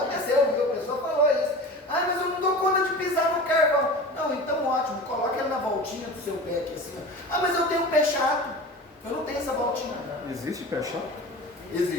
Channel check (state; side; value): normal; both; correlation 0.34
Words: viu? A pessoa falou isso. Mas eu não dou conta de pisar no carvão. Não, então ótimo, coloca ele na voltinha do seu pé aqui assim. Mas eu tenho pé chato. Eu não tenho essa voltinha. Existe pé chato?